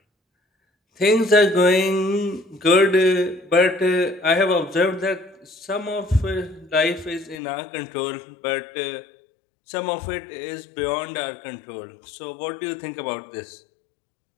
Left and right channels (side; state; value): right; drops out; at 7.4 s